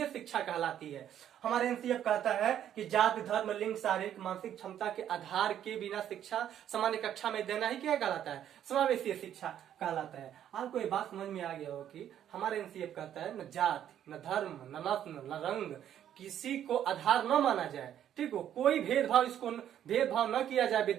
शिक्षा कहलाती है। हमारे एनसीएफ कहता है कि जाति, धर्म, लिंग, शारीरिक मानसिक क्षमता के आधार के बिना शिक्षा सामान्य कक्षा में देना ही क्या कहलाता है, समावेशी शिक्षा कहलाता है। आपको ये बात समझ में आ गया हो कि हमारे एनसीएफ कहता है न जाति, न धर्म, न नस्ल, न रंग, किसी को आधार न माना जाए। ठीक हो, कोई भेदभाव, इसको भेदभाव न किया जाए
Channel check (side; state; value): left; quieter; 10.4 dB